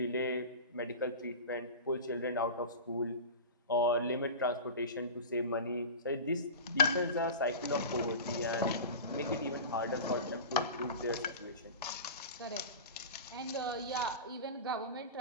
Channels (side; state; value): both; inverted; correlation -0.30